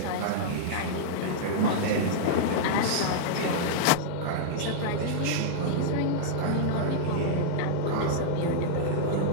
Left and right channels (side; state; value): both; different; correlation -0.02